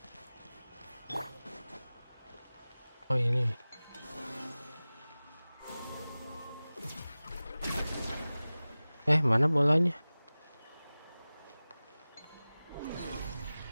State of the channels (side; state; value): both; inverted; correlation -0.98